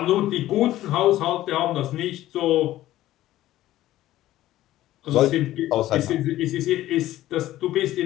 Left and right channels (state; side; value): quieter; right; 14.6 dB